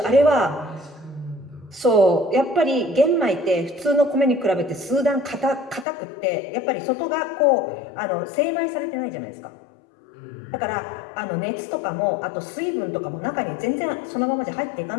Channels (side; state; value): right; drops out; at 5.9 s